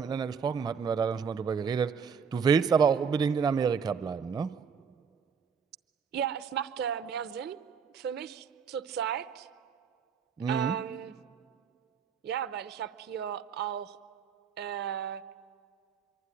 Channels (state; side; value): quieter; left; 6.5 dB